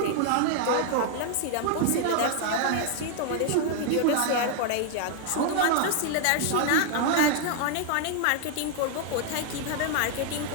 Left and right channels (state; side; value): different; both; correlation 0.00